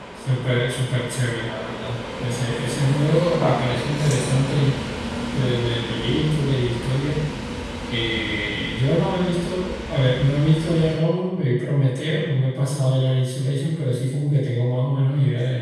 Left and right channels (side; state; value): both; identical; correlation 1.00